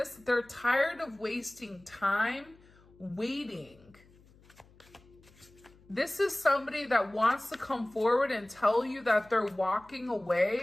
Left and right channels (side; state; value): left; noise; hum, 27 dB below the sound